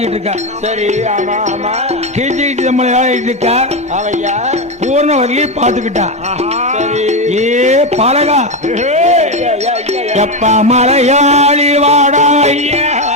இருக்கா. சரி, கீழ்ச்சி கீழ்ச்சி தம்பளம் விளையாடிட்டு இருக்கா. பூர்ணவல்லி பாத்துக்கிட்டா. ஏ பழகா எப்ப மலையாளி வாடா ஐயா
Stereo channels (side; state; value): both; normal; correlation 0.11